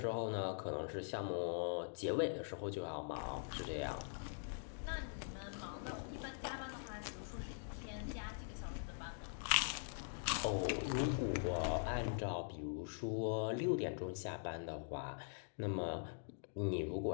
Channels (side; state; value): right; silent; digital silence